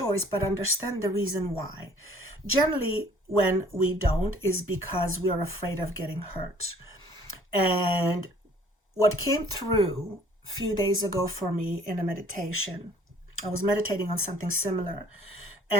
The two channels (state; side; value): normal; both; correlation 0.55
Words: but understand the reason why. Generally, when we don't is because we are afraid of getting hurt. And what came through a few days ago for me in a meditation, I was meditating on something similar.